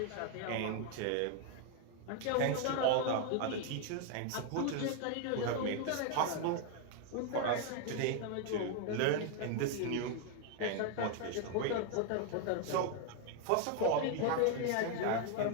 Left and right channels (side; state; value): both; different; correlation 0.00